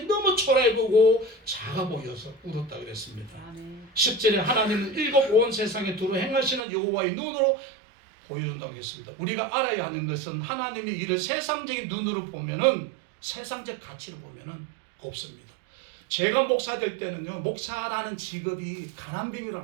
너무 초라해 보고 작아 보여서 울었다 그랬습니다. 10절에 하나님은 일곱 온 세상에 두루 행하시는 여호와의 눈으로 보여준다고 했습니다. 우리가 알아야 하는 것은 하나님의 일을 세상적인 눈으로 보면은 세상적 가치로 보면은 없습니다. 제가 목사 될 때는요, 목사라는 직업이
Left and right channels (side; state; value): left; drops out; at 6.6 s